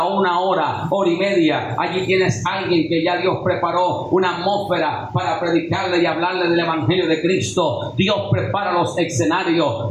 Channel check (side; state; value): both; identical; correlation 1.00